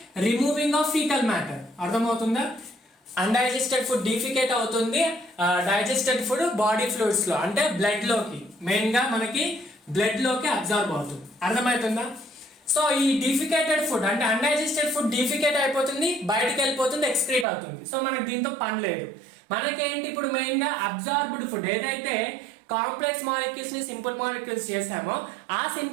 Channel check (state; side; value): drops out; left; at 17.4 s